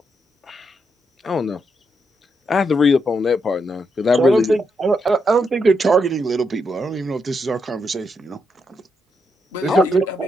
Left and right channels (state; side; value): normal; both; correlation 0.81